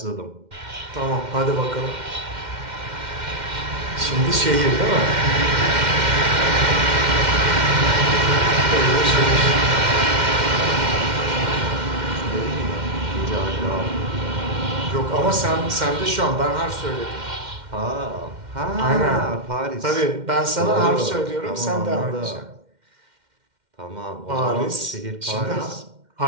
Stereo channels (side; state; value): left; late; 2.1 ms